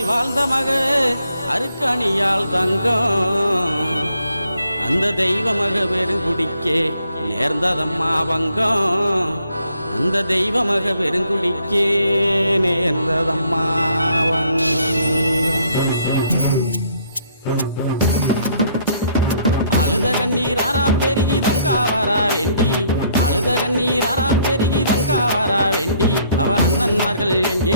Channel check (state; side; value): inverted; both; correlation -0.67